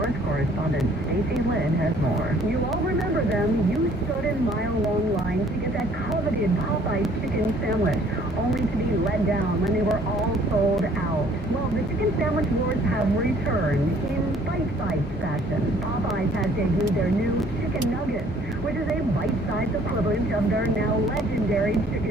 Correspondent Stacey Lynn has more. You all remember them. You stood in mile-long lines to get that coveted Popeyes chicken sandwich, only to be let down when they were all sold out. Well, the Chicken Sandwich Wars have returned in bite-sized fashion. Popeyes has debuted their new Chicken Nuggets, which is a bite-sized equivalent of their now legendary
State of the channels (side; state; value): both; normal; correlation 0.58